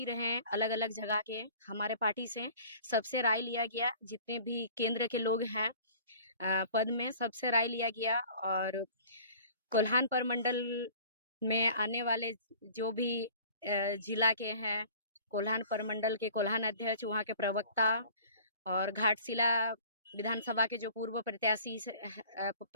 रहे अलग अलग जगह के हमारे पार्टी से, सबसे राय लिया गया। जितने भी केंद्र के लोग हैं पद में, सबसे राय लिया गया। और कोल्हान प्रमंडल में आने वाले जो भी जिला के हैं, कोल्हान प्रमंडल के कोल्हान अध्यक्ष, वहाँ के प्रवक्ता और घाटशिला विधानसभा के जो पूर्व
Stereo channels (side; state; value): both; inverted; correlation -0.47